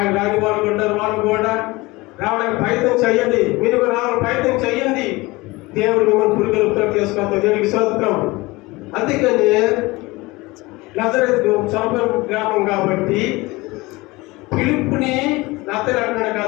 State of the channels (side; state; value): right; quieter; 22.2 dB